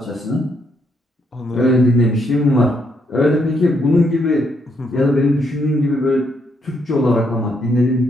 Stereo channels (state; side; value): normal; both; correlation 0.75